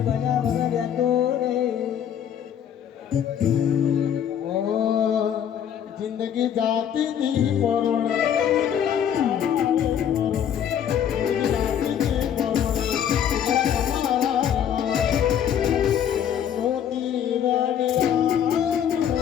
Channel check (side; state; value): right; quieter; 9.2 dB